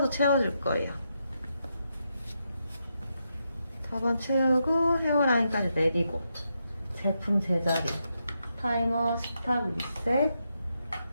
채워줄 거예요. 터번 채우고 헤어라인까지 내리고 제품 제자리 타이머, 스탑, 리셋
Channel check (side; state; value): both; inverted; correlation -0.83